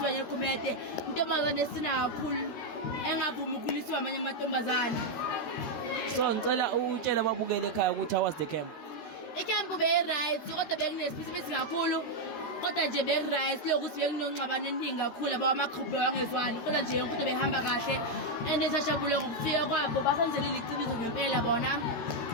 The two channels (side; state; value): right; late; 13 ms